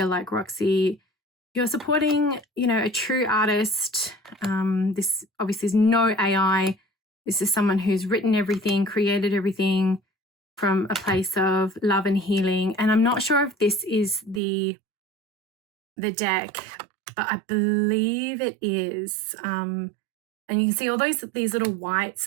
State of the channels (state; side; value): drops out; left; at 14.4 s